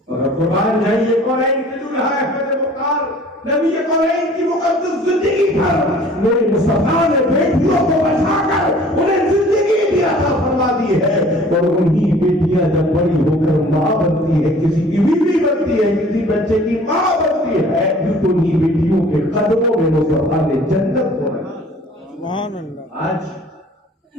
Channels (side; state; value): both; normal; correlation 0.50